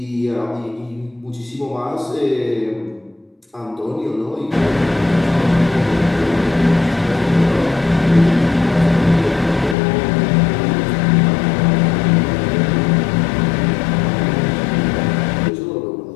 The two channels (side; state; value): right; drops out; at 9.8 s